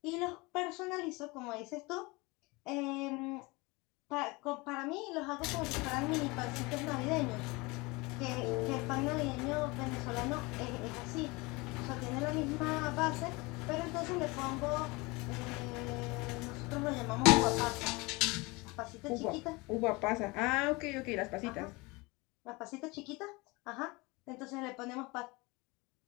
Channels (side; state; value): right; quieter; 24.8 dB